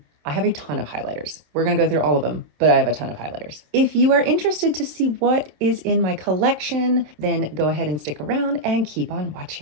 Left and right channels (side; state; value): left; late; 27 ms